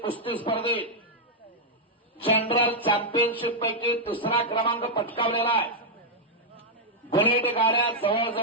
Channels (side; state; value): both; normal; correlation -0.04